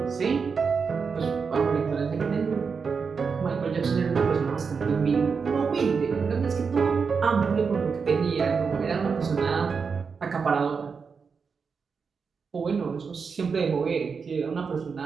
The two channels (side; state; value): left; quieter; 5.5 dB